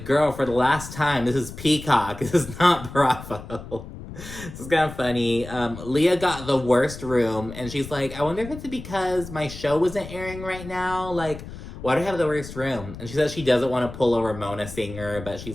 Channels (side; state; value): left; noise; rumble, 13 dB below the sound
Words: girl, for the last time, this is Peacock. This is not Bravo. This is kind of funny. Leah got the worst room, and she's I wonder if it's because my show isn't airing right now. Why do I have the worst room? And she says she doesn't want to pull a Ramona singer, but